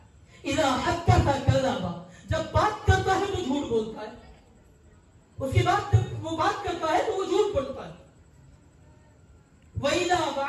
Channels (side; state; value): both; identical; correlation 1.00